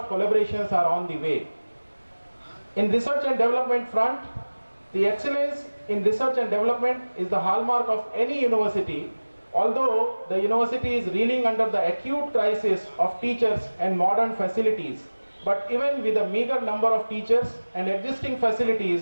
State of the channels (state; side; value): inverted; both; correlation -1.00